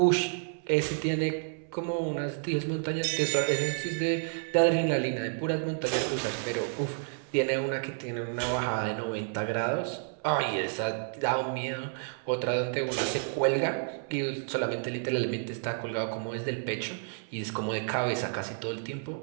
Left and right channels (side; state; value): left; silent; 58 dB below the other